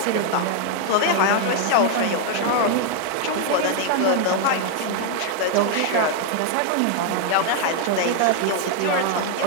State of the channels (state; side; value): different; both; correlation 0.00